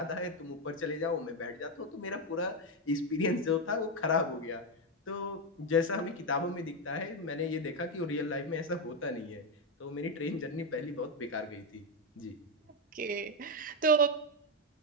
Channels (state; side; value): normal; both; correlation 0.06